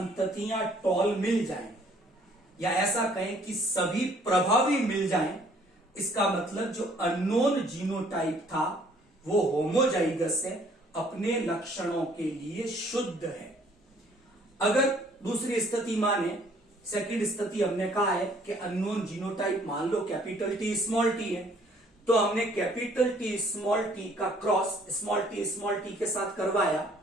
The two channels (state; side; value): normal; both; correlation 0.60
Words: टॉल मिल जाएं, या ऐसा कहें कि सभी प्रभावी मिल जाएं, इसका मतलब जो अननोन जीनोटाइप था वो होमोजाइगस है, अपने लक्षणों के लिए शुद्ध है। अगर दूसरी स्थिति माने, सेकंड स्थिति हमने कहा है कि अननोन जीनोटाइप मान लो कैपिटल टी स्मॉल टी है, तो हमने कैपिटल टी स्मॉल टी का क्रॉस स्मॉल टी के साथ करवाया,